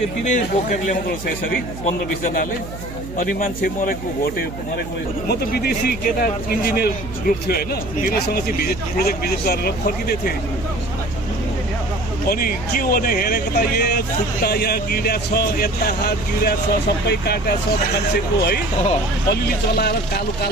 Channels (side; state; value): right; noise; hum, 11 dB below the sound